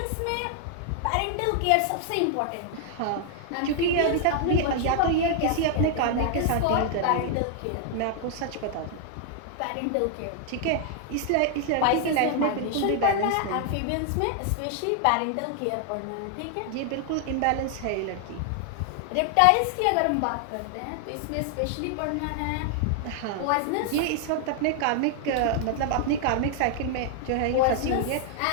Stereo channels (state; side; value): different; both; correlation 0.00